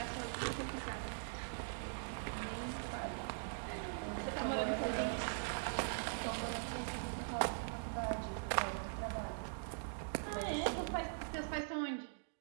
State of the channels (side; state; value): left; silent; digital silence